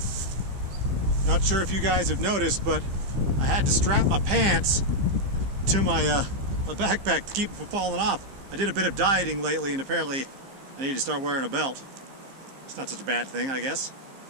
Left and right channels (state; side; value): late; left; 15 ms